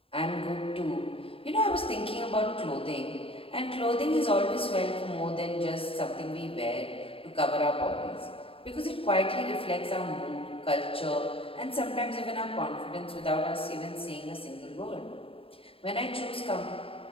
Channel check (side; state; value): right; late; 0.27 ms